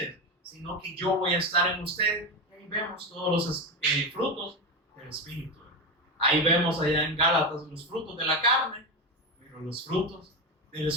sino que yo voy a estar en ustedes. Y ahí vemos todos los frutos del Espíritu. Ahí vemos allá en Gálatas los frutos de la carne, pero los frutos del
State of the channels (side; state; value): both; normal; correlation 0.16